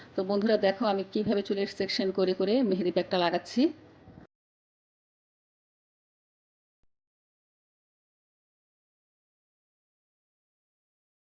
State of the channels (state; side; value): identical; both; correlation 1.00